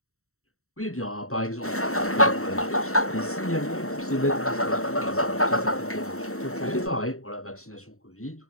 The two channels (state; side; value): late; right; 0.63 ms